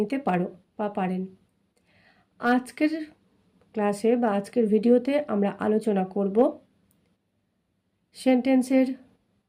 পারো বা পারেন। আজকের ক্লাসে বা আজকের ভিডিওতে আমরা আলোচনা করব সেন্টেন্সের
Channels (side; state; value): both; identical; correlation 1.00